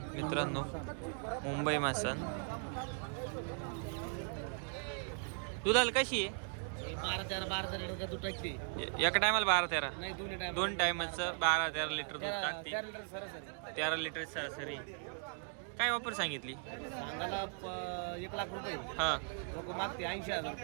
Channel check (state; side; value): silent; left; 52 dB below the other